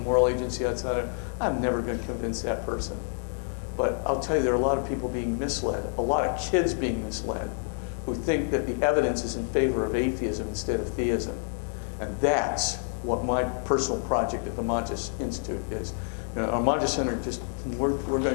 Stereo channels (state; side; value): silent; right; 57 dB below the other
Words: agency outside of, I'm never going to convince that person. But I'll tell you, there are a lot of people being misled, a lot of kids being misled, who think that the evidence is in favor of atheism instead of theism. And that's what my personal project at the Montes Institute is. Our Montes Center, we're going